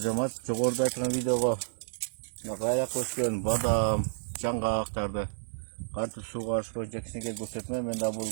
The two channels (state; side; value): silent; left; digital silence